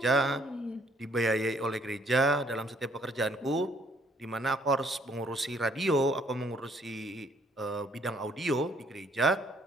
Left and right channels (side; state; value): both; normal; correlation 0.64